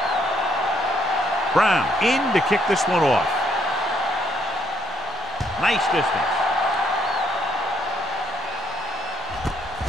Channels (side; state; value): both; normal; correlation 0.71